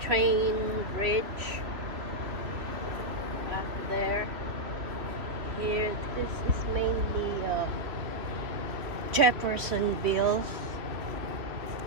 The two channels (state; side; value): late; left; 3.1 ms